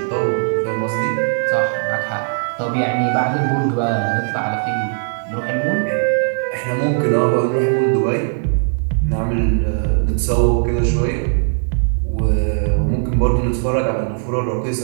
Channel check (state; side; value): silent; left; 67 dB below the other